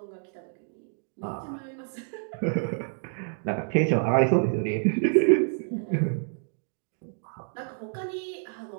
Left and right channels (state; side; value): silent; left; 59 dB below the other